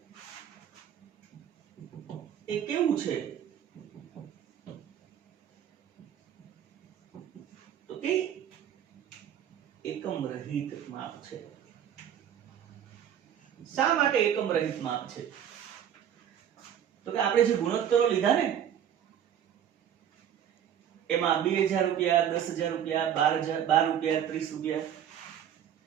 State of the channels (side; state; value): left; quieter; 9.6 dB